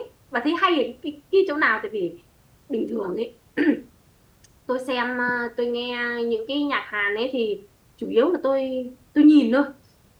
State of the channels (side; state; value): both; identical; correlation 1.00